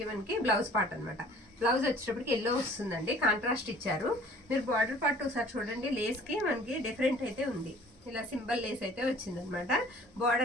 మనకి బ్లౌజ్ పార్ట్ అనమాట. బ్లౌజ్ వచ్చేటప్పటికి ఎల్లో వస్తుందండి, కాంట్రాస్ట్ ఇచ్చారు. మీరు బార్డర్ పార్ట్ ఒకసారి చూడండి, లేస్కి మనకి డిఫరెంట్ అయితే ఉంది. ఇలా సింబల్ లేస్ అయితే వచ్చిందనమాట.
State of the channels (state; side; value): normal; both; correlation 0.51